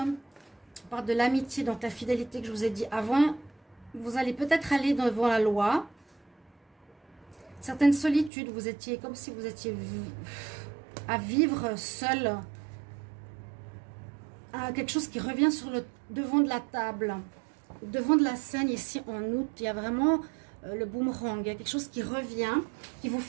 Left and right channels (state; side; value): drops out; left; at 8.3 s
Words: parle de l'amitié, donc la fidélité que je vous ai dit avant. Vous allez peut-être aller devant la loi. Certaines solitudes, vous étiez comme si vous étiez à vivre seul. Quelque chose qui revient sur le devant de la table, devant de la scène ici en août. Il y a vraiment le boomerang. Il y a quelque chose qui revient, qu'il vous